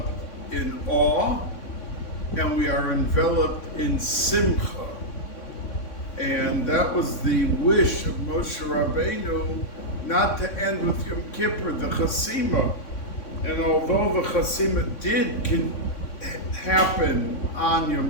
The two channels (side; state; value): right; late; 3.6 ms